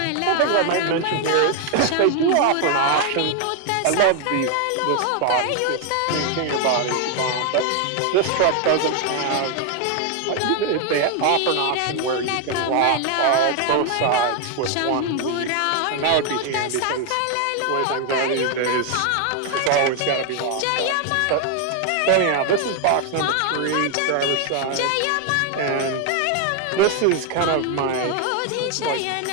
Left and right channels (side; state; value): both; different; correlation 0.00